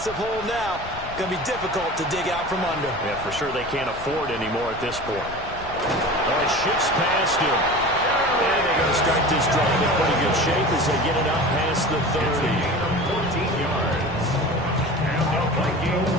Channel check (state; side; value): noise; left; rumble, 14 dB below the sound